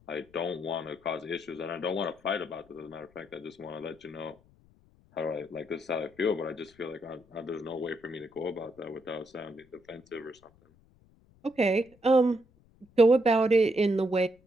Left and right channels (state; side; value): noise; left; rumble, 30 dB below the sound